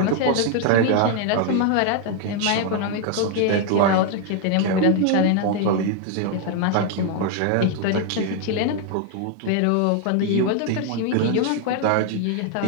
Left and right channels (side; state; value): both; different; correlation 0.00